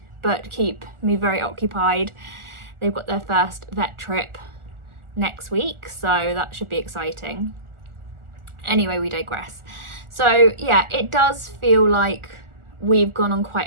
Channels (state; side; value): late; left; 1.4 ms